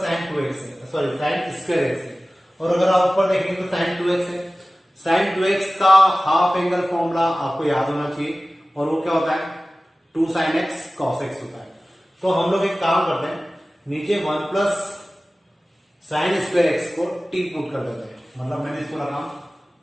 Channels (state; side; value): normal; both; correlation 0.97